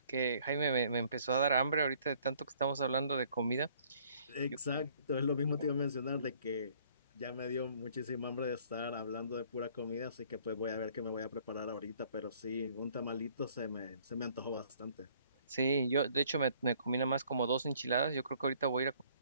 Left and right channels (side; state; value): both; inverted; correlation -0.60